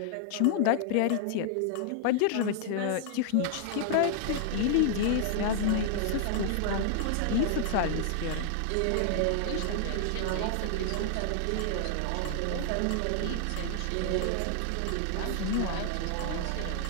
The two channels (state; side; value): different; both; correlation -0.01